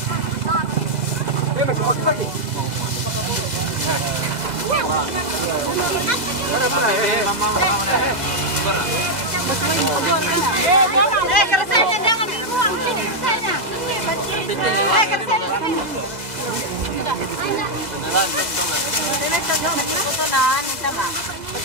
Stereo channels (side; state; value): left; late; 2.0 ms